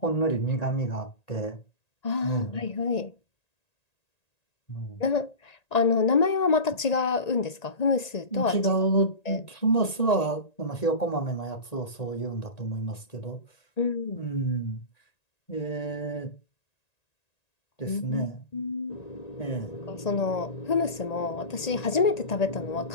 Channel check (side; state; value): right; late; 1.9 ms